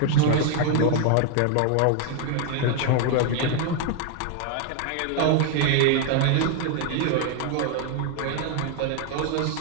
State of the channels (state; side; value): different; both; correlation 0.00